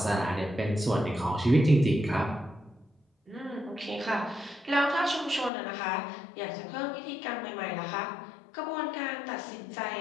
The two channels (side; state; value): right; drops out; at 5.5 s